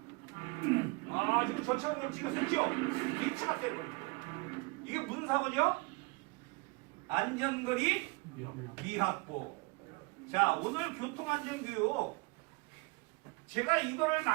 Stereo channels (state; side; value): quieter; left; 28.0 dB